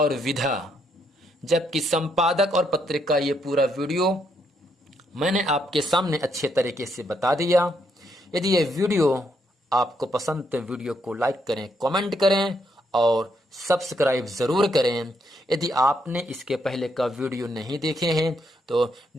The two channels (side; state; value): both; normal; correlation 0.75